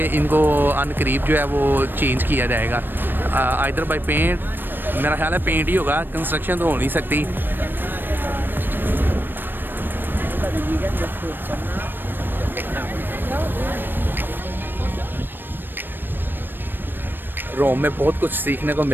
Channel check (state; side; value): late; left; 0.095 ms